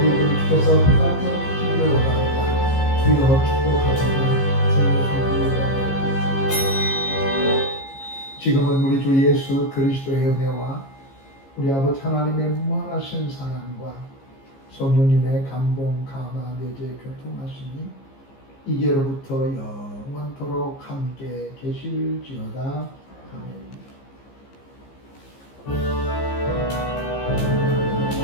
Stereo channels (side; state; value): right; late; 15 ms